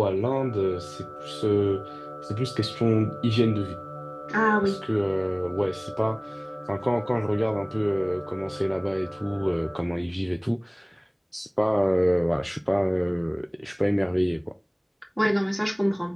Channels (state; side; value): identical; both; correlation 1.00